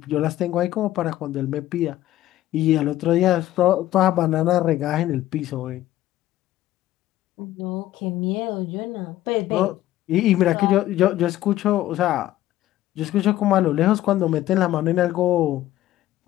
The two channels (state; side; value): quieter; right; 14.4 dB